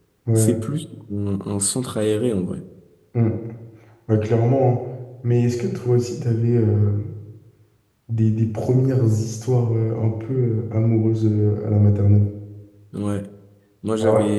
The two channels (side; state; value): both; identical; correlation 1.00